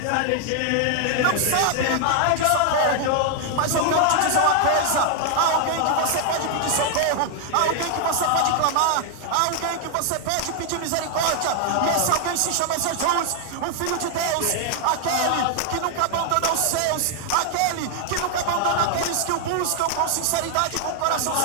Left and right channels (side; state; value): both; different; correlation 0.00